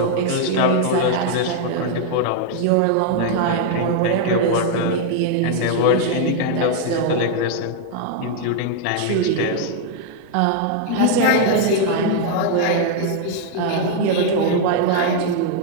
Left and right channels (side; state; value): both; different; correlation 0.00